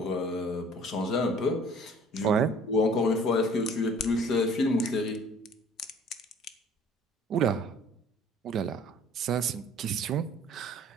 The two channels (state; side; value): normal; both; correlation 0.52